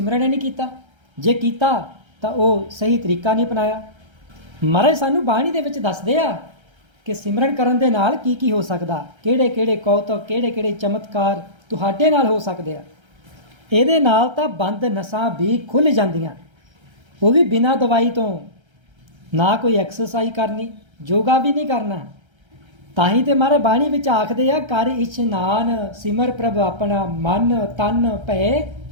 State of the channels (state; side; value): late; left; 1.3 ms